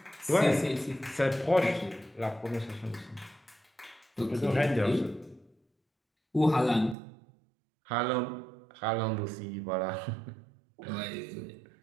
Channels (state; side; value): drops out; left; at 7.0 s